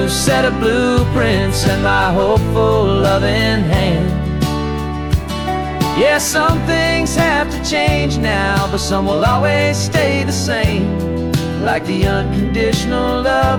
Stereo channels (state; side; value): identical; both; correlation 1.00